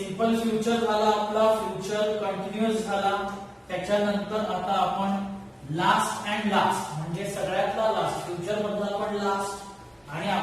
फ्युचर झाला आपला, फ्युचर कंटिन्युअस झाला. त्याच्यानंतर आता आपण लास्ट अँड लास्ट म्हणजे सगळ्यातला लास्ट, फ्युचर मधला आपण लास्ट आणि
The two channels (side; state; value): both; identical; correlation 1.00